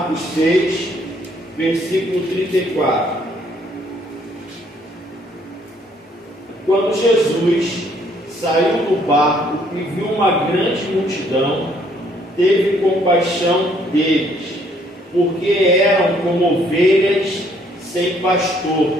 6, versículo 34. Quando Jesus saiu do barco e viu uma grande multidão, teve compaixão deles, porque eram como ovelhas sem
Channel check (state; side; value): normal; both; correlation 0.65